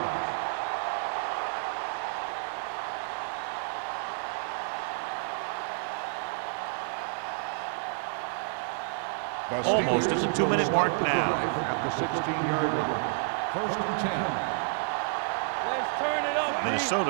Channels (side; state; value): left; silent; 58 dB below the other